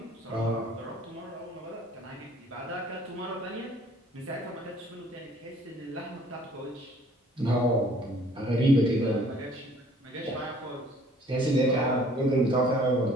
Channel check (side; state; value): both; normal; correlation 0.56